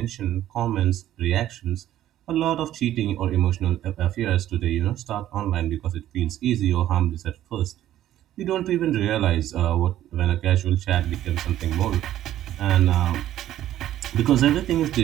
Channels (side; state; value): left; quieter; 12.7 dB